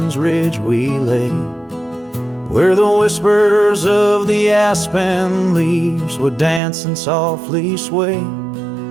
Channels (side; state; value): left; drops out; at 6.6 s